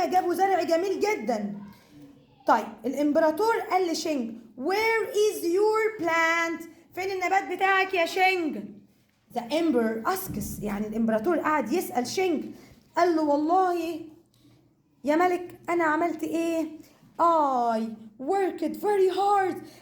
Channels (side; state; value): both; identical; correlation 1.00